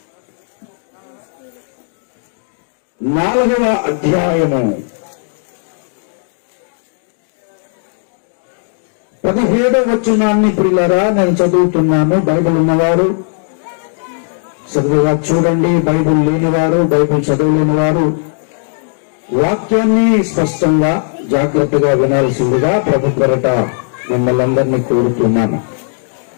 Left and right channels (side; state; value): right; silent; digital silence